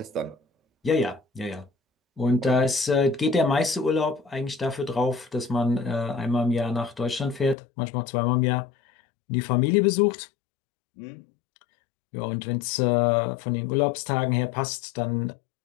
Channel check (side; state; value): right; drops out; at 7.6 s